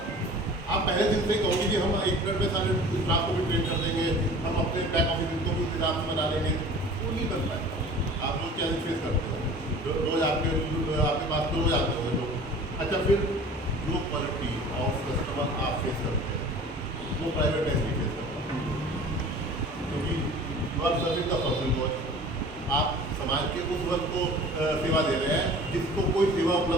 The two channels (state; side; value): normal; both; correlation 0.43